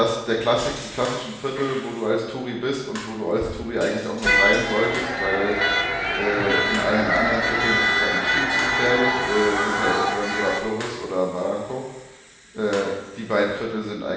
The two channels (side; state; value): both; identical; correlation 1.00